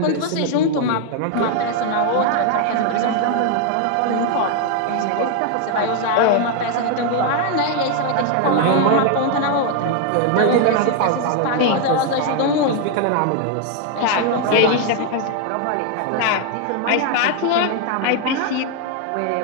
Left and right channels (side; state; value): both; different; correlation 0.00